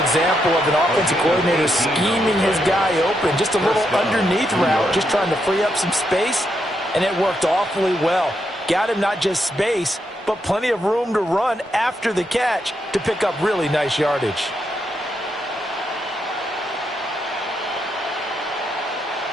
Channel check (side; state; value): both; normal; correlation 0.81